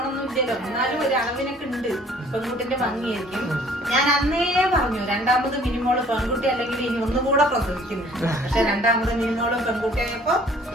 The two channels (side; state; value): both; normal; correlation 0.55